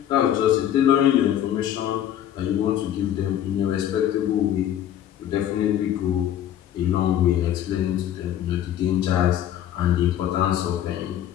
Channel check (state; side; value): quieter; right; 11.0 dB